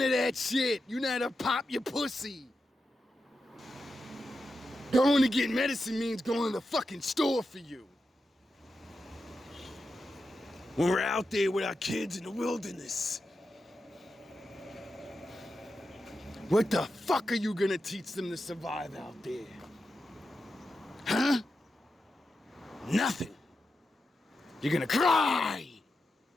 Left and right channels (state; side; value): normal; both; correlation 0.89